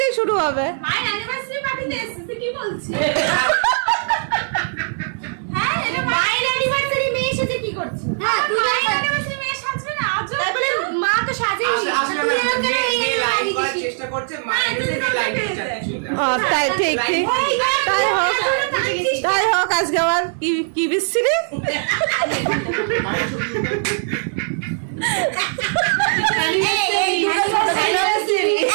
শুরু হবে। তাই ঠিক ঠিক, তাই হোক। আজকে আবার কি বিশ্রী।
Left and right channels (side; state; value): left; silent; 66 dB below the other